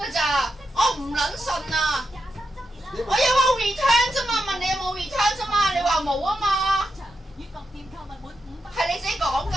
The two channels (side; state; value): both; normal; correlation 0.86